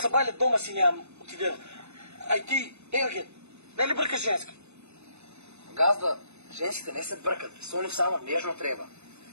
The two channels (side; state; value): left; late; 0.81 ms